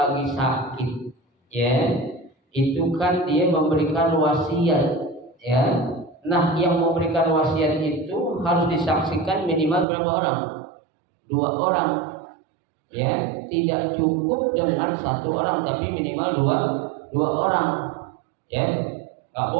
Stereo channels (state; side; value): drops out; left; at 9.9 s